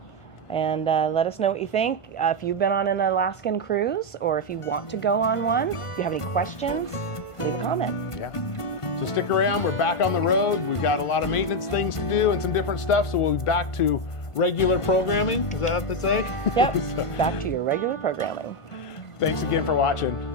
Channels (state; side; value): late; right; 1.5 ms